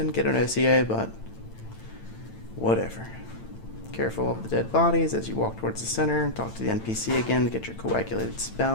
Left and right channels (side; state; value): right; late; 9.0 ms